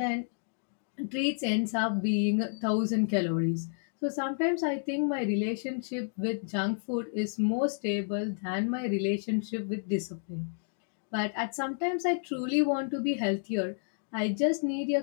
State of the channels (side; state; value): right; silent; digital silence